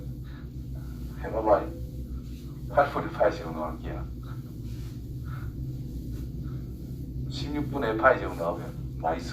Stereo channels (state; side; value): identical; both; correlation 1.00